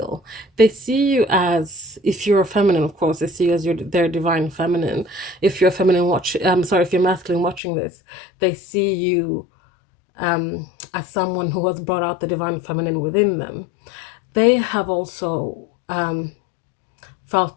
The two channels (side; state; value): right; drops out; at 7.6 s